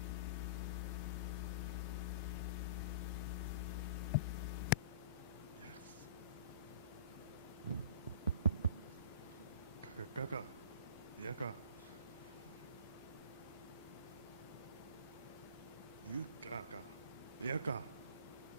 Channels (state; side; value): inverted; both; correlation -0.40